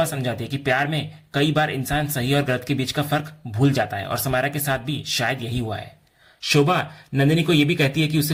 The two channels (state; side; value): identical; both; correlation 1.00